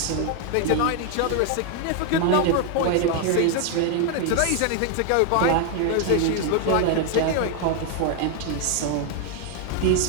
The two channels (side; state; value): both; different; correlation 0.01